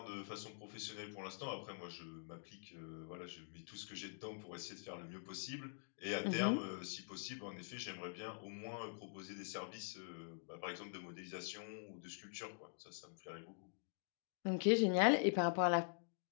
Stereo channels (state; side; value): silent; right; digital silence